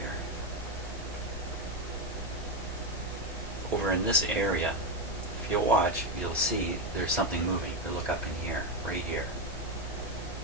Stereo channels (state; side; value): normal; both; correlation 0.09